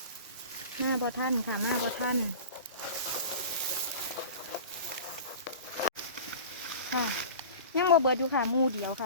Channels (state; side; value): inverted; both; correlation -0.37